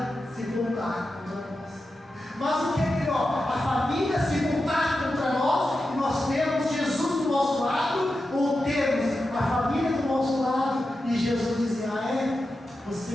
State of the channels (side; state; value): both; normal; correlation 0.90